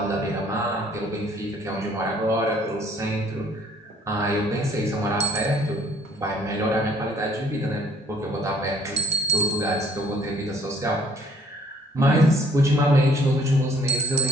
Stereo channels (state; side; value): normal; both; correlation 0.57